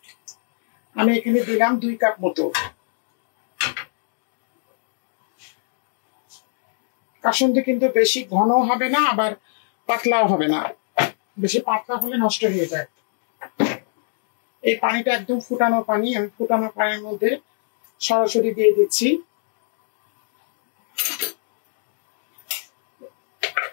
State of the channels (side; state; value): right; silent; digital silence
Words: আমি এখানে দিলাম 2 কাপ মতো। কাসুন্দি কিন্তু বেশি ঘন হবে না, আবার পাতলাও হবে না। বেশি পাতলা হলে নষ্ট হয়ে যায়। এই পানিটা একদম ফুটানো পানি, আমি ফুটানো পানির মধ্যে সরাসরি দিয়ে দিচ্ছি।